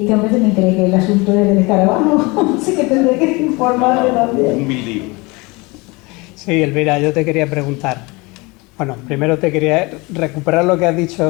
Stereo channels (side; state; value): right; quieter; 25.3 dB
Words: hombre también cree que el asunto es del escarabajo, así que tendré que informarle también. Un mildiu. Sí. Sí, Elvira, yo te quería preguntar. Bueno, primero te quería recuperar lo que has dicho,